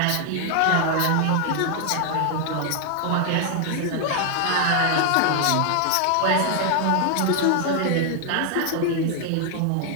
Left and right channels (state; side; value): different; both; correlation 0.00